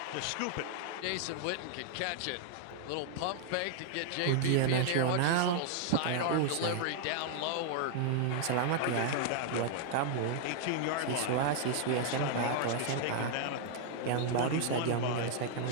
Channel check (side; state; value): both; different; correlation -0.01